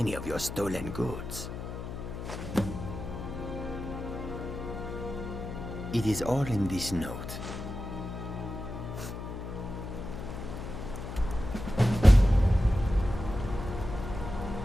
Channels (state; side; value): noise; left; hum, 7 dB below the sound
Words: of your stolen goods. It is all in this note.